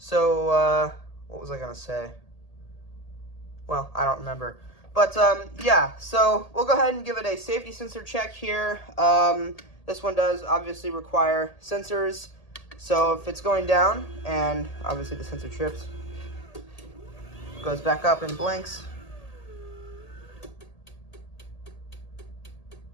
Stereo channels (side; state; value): right; late; 1.8 ms